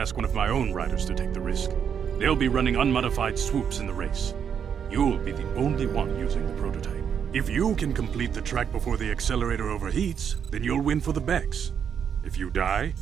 one of my own riders to take the risk. They'll be running unmodified swoops in the race. You'll be the only one using the prototype. If you can complete the track before the accelerator overheats, then you'll win for the Bex. If you die,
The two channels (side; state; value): left; quieter; 7.8 dB